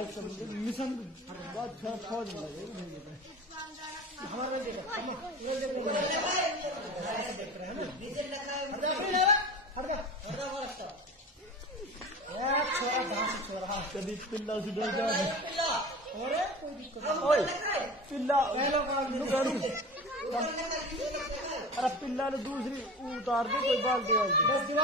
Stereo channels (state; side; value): normal; both; correlation 0.34